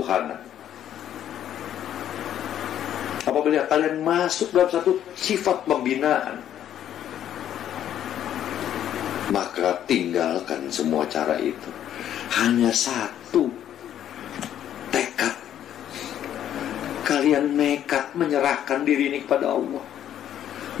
apabila kalian masuk dalam satu sifat pembinaan, maka tinggalkan semua cara itu. Hanya satu tekad. Kalian nekat menyerahkan diri ini kepada Allah.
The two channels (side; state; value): right; quieter; 10.6 dB